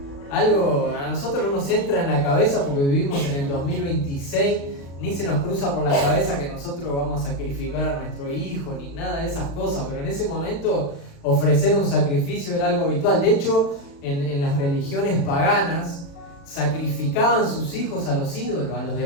Algo a nosotros no nos entra en la cabeza porque vivimos en el 2026, ni se nos cruza por la cabeza que nosotros vamos a sacrificar a nuestro hijo, ni nada de esas cosas, pero en ese momento ofrecer un sacrificio era algo habitual. De hecho, en las religiones paganas sacrificaban sus hijos a los ídolos, a los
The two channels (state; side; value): late; right; 36 ms